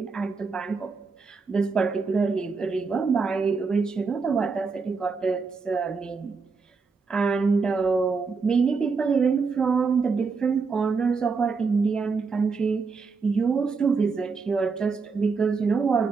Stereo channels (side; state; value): left; quieter; 4.8 dB